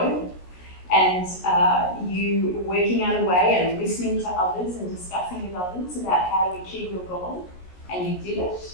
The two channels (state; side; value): late; right; 16 ms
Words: and you working out a way and listening to others and discussing with others about how to achieve your goal, and you did